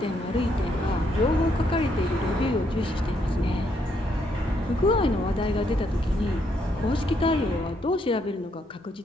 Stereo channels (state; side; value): normal; both; correlation 0.74